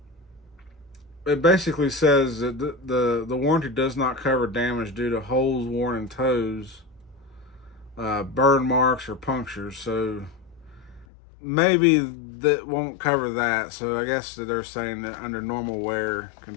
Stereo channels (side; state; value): right; drops out; at 11.1 s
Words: it basically says that the warranty does not cover damage due to holes worn in toes, burn marks, or punctures. So maybe that won't cover that. So I guess that they're saying that under normal wear